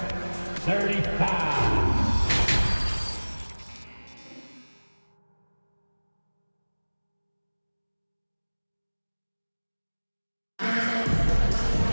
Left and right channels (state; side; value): inverted; both; correlation -1.00